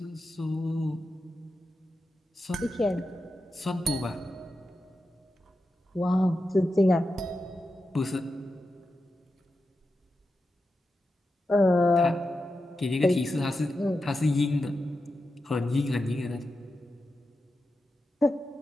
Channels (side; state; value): both; normal; correlation 0.90